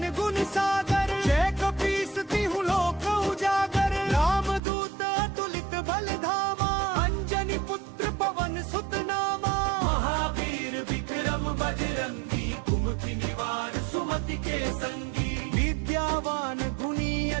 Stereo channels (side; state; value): left; drops out; at 4.6 s